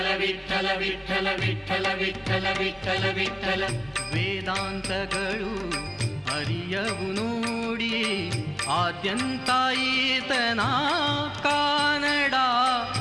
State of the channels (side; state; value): both; identical; correlation 1.00